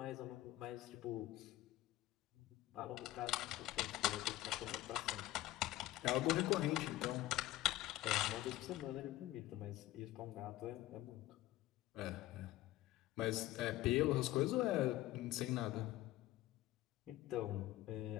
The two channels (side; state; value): right; quieter; 15.7 dB